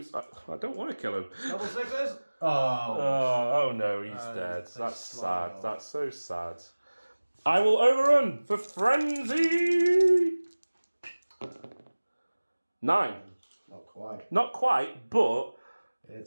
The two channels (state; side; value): inverted; both; correlation -1.00